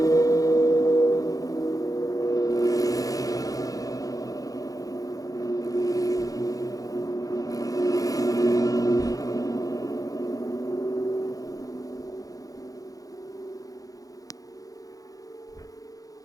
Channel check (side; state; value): right; late; 0.17 ms